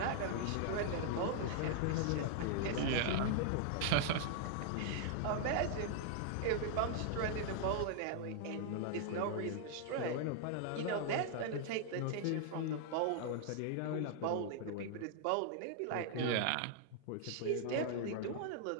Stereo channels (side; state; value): both; different; correlation -0.01